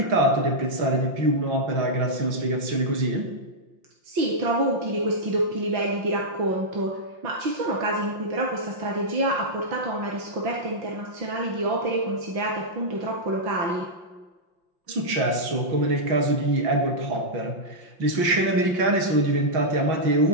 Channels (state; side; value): late; left; 5.7 ms